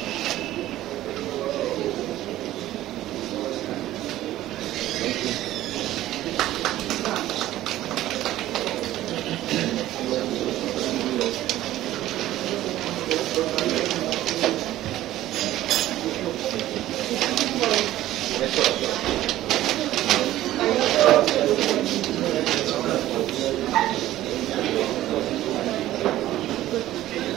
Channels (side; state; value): left; quieter; 14.5 dB